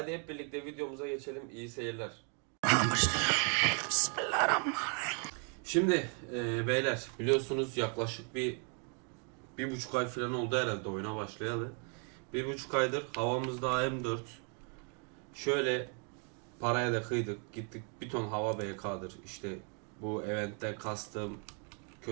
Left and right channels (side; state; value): left; quieter; 39.1 dB